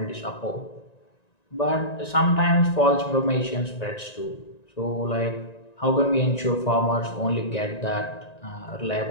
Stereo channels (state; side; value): late; right; 1.9 ms